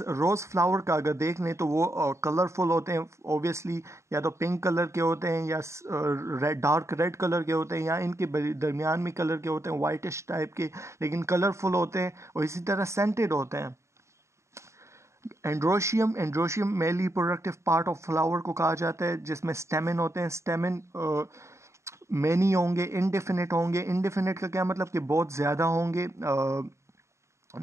फ्लावर का अगर देख लें तो वो कलरफुल होते हैं ऑब्वियसली, या तो पिंक कलर के होते हैं या डार्क रेड कलर के होते हैं, या इनके दरमियान में कलर के होते हैं वाइटिश टाइप के, लेकिन कलरफुल होते हैं और इसी तरह सेंटेड होते हैं। Androecium male reproductive part of flower को कहा जाता है, जिसमें स्टेमिन होते हैं। स्टेमिन मैनी होंगे, इनडेफिनिट होंगे। इनडेफिनिट का क्या मतलब कि बहुत ज़्यादा होंगे,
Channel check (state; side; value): late; left; 0.14 ms